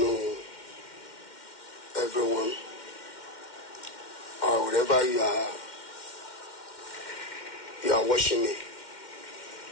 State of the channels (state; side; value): late; right; 2.1 ms